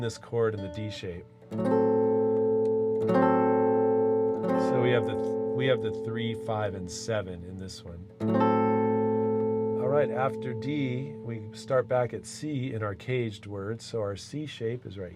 chord in the D shape. So we have the 3, 5, and 7 in this one. All right, after D, we start back at C in our caged words. So our C shape is right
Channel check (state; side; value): identical; both; correlation 1.00